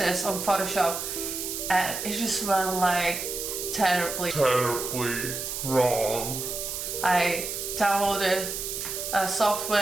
on Photoshop, and it just went terribly wrong. I downloaded a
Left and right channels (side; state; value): right; noise; hiss, 5 dB below the sound